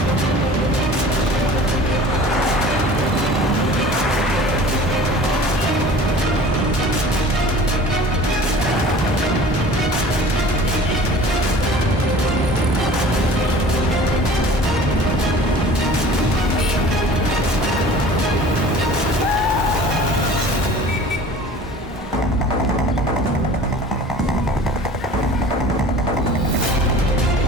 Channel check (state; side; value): normal; both; correlation 0.43